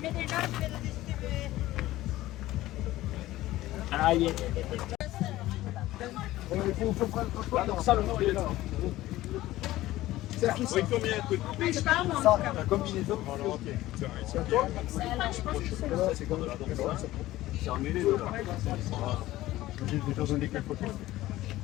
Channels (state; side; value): quieter; right; 16.2 dB